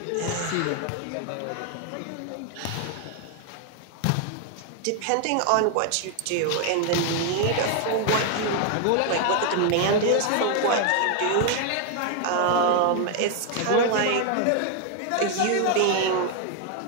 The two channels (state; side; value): different; both; correlation 0.00